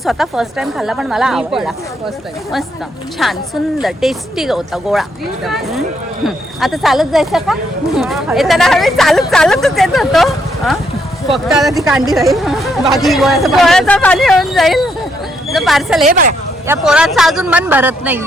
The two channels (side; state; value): both; normal; correlation 0.75